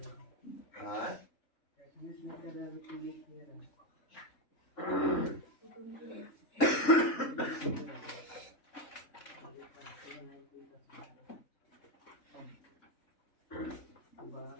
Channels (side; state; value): right; late; 3.6 ms